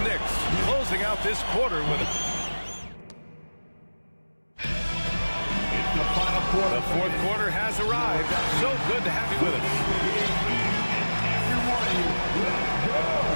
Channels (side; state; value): both; inverted; correlation -1.00